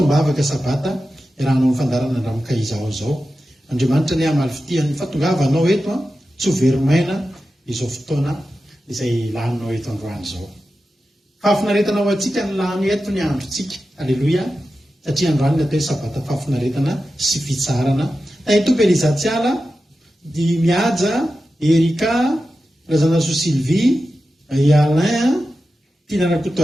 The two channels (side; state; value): both; normal; correlation 0.92